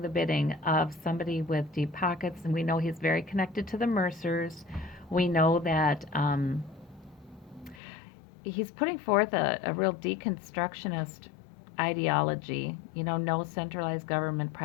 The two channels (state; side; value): drops out; right; at 7.8 s